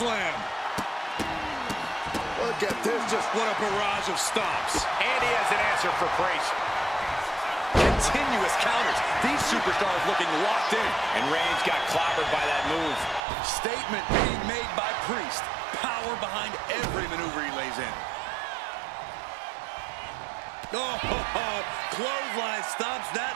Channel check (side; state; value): left; drops out; at 13.2 s